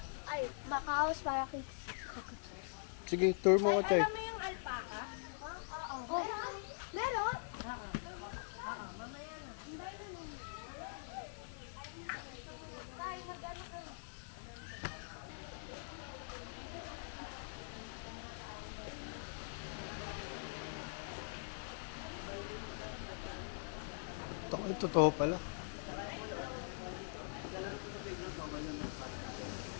Ay, makaos para kay cockatoos. Sige, tour mo ko, Chay. Alam mo yung alpaca? Oo. Meron? Totoo pala.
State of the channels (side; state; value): right; silent; digital silence